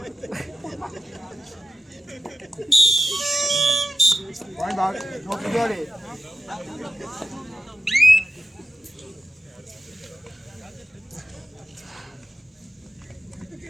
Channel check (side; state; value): both; normal; correlation 0.90